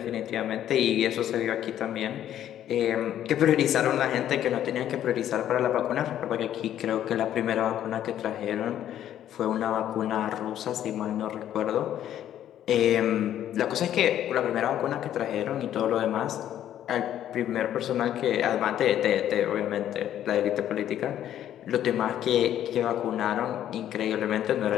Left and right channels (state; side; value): quieter; right; 11.2 dB